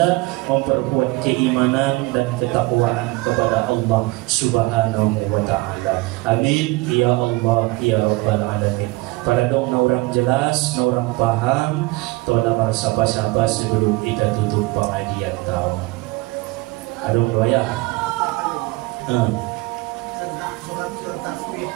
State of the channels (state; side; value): quieter; left; 22.2 dB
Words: memperkuat keimanan dan ketakwaan kepada Allah Subhanahu wa ta'ala. Amin ya Allah ya Rabbal alamin. Pada dong na orang jelas, na orang paham, tola marsapa-sapa sebelum kita tutup pengajian tahun. Adong doya.